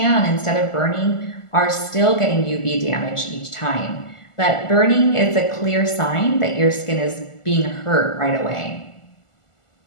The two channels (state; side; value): late; right; 1.4 ms